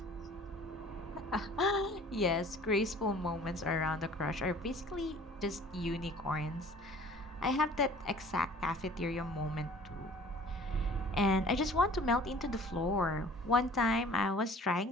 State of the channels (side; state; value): both; normal; correlation 0.49